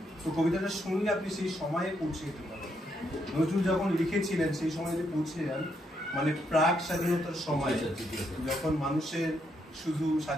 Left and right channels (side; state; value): both; normal; correlation 0.77